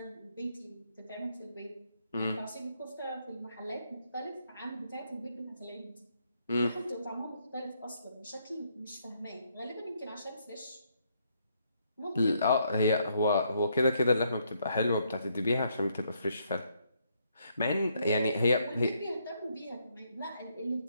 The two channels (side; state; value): both; inverted; correlation -0.73